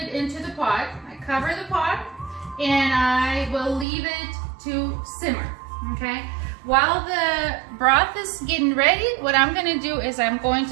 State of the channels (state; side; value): drops out; left; at 3.9 s